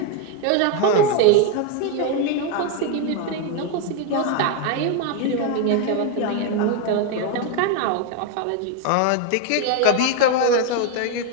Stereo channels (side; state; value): both; different; correlation 0.01